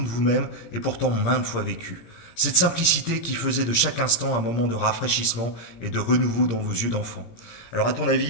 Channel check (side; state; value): right; late; 17 ms